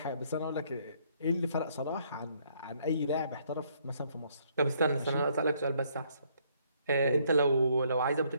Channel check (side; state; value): both; inverted; correlation -0.68